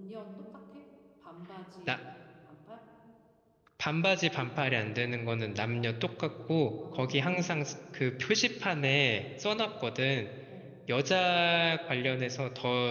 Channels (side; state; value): both; identical; correlation 1.00